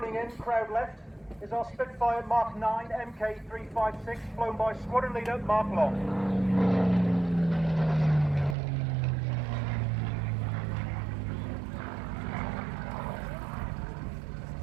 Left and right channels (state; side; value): drops out; left; at 8.6 s